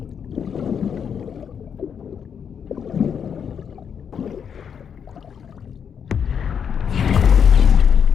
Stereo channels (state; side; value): quieter; right; 7.4 dB